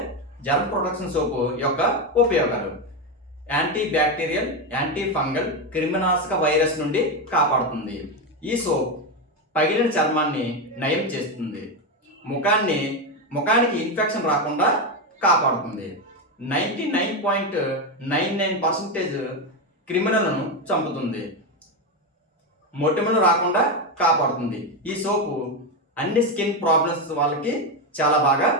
జర్మ్ ప్రొటెక్షన్ సోప్ యొక్క ఉపయోగాలు: యాంటీ బ్యాక్టీరియల్, యాంటీ ఫంగల్, క్రిమినాశక వైరస్ నుండి కాపాడుతుంది. ఈ సోప్ పగిలిన చర్మాన్ని నయం చేస్తుంది. ముఖానికి ఇన్ఫెక్షన్ రాకుండా కాపాడుతుంది. 99.99% క్రిమినల్ను చంపుతుంది. మొటిమలు రాకుండా కాపాడుతుంది. ఈ సోపు అన్ని స్కిన్ ప్రాబ్లమ్స్ వాళ్ళకి చాలా బాగా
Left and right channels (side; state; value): both; normal; correlation 0.10